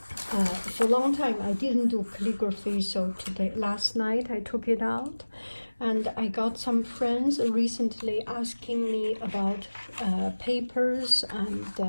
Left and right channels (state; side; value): inverted; both; correlation -1.00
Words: for a long time I didn't do calligraphy, so last night I took it out, and I got some friends recently asking me about papers and